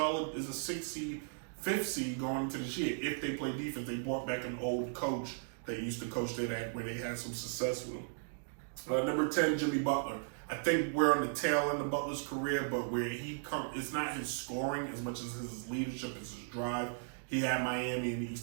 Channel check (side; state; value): left; silent; digital silence